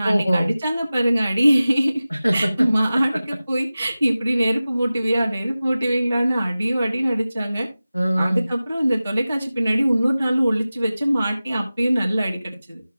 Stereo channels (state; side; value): inverted; both; correlation -0.96